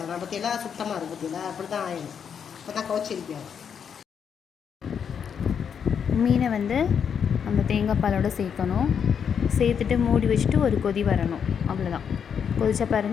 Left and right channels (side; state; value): right; quieter; 7.4 dB